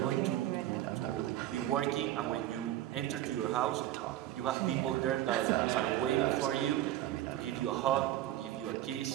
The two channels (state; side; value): quieter; left; 13.6 dB